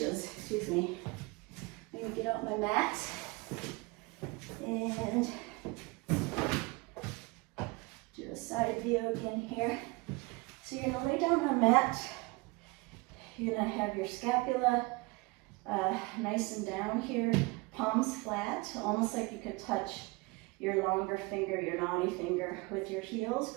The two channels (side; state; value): left; quieter; 25.2 dB